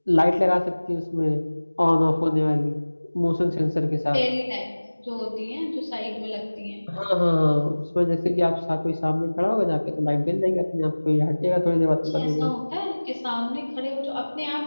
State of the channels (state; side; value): inverted; both; correlation -1.00